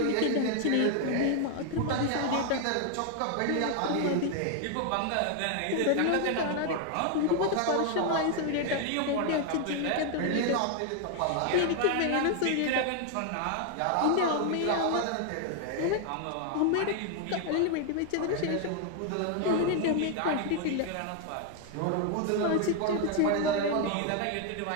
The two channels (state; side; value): different; both; correlation 0.00